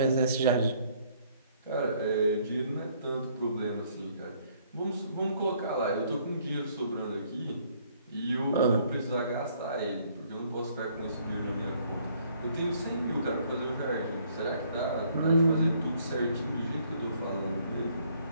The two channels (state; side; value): inverted; both; correlation -0.64